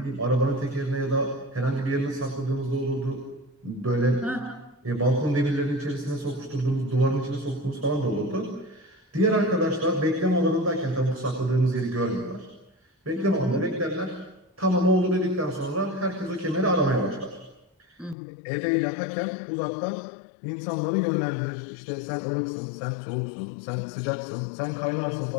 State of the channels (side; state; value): right; drops out; at 18.2 s